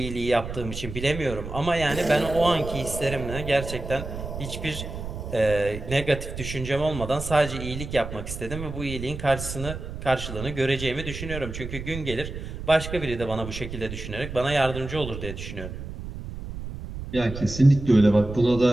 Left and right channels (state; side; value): noise; right; rumble, 8 dB below the sound